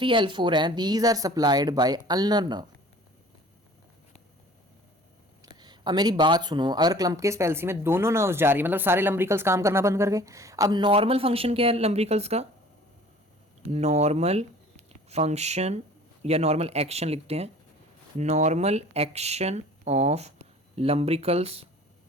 L4 हैं, these are supplied by ulnar nerve. अब मेरी बात सुनो, अगर क्लम्पकिस पैल्सी में दोनों नर्व्स जा रही है, मतलब सारे लम्ब्रिकल्स काम करना बंद कर गए। अब नॉर्मल फंक्शन क्या है लम्ब्रिकल्स का, नॉर्मल फंक्शन या नॉर्मल एक्शन लिखते हैं, normal action of lumbricals,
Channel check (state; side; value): normal; both; correlation 0.48